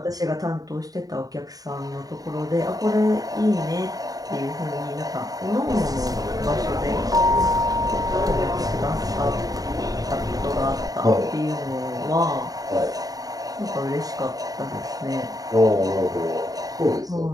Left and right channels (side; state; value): left; late; 0.18 ms